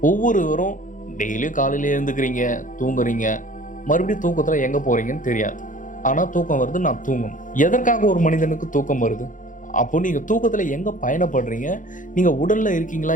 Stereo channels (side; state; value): right; late; 0.38 ms